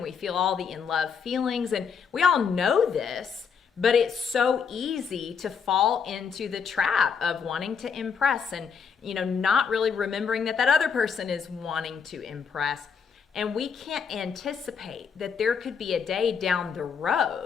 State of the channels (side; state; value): right; quieter; 6.5 dB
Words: we feel all the in love feelings, and we all know this, but it's so easy to fall into the trap of wanting to impress and, not really remembering that other person is wanting to impress. And we can't anticipate that there could be a day down the